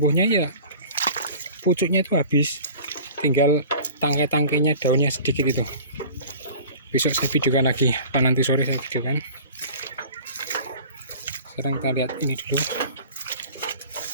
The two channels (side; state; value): both; inverted; correlation -0.42